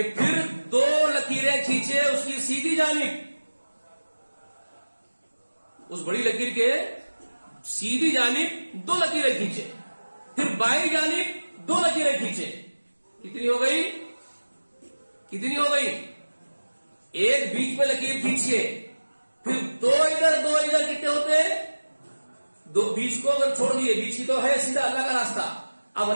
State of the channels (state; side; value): inverted; both; correlation -1.00